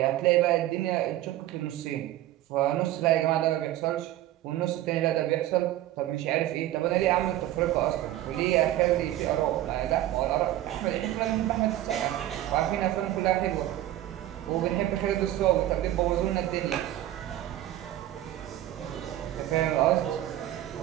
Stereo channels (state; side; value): quieter; left; 14.0 dB